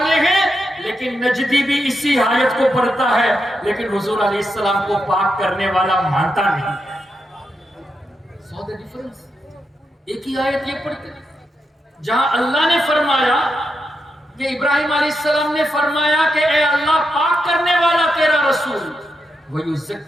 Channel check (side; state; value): both; normal; correlation 0.85